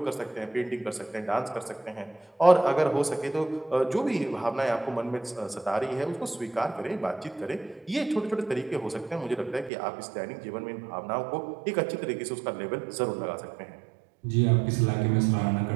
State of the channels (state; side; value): drops out; left; at 9.7 s